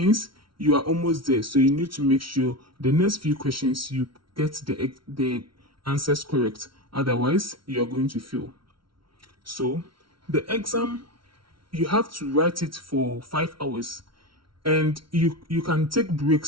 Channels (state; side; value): late; left; 0.74 ms